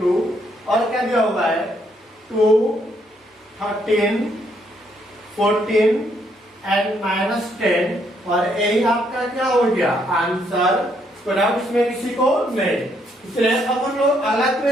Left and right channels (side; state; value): both; normal; correlation 0.72